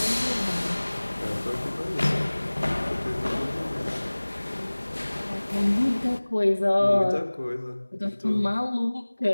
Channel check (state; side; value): inverted; both; correlation -1.00